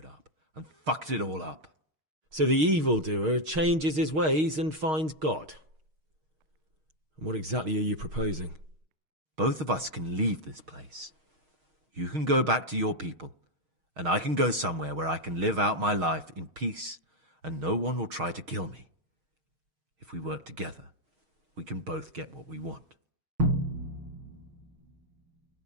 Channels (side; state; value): left; late; 6.4 ms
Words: up and fucked it all up. So the evildoer changes his ways and finds God. And what exactly are you proposing? Both of us can leave this place. You can go back to your people, and I can go somewhere where I can live out my life in peace, and no one will try to kill me. If we work together, we can both get what we want.